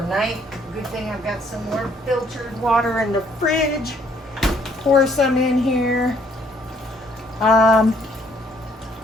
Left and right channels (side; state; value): both; normal; correlation 0.65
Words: Good thing I've got some more filtered water in the fridge. Pour some in here.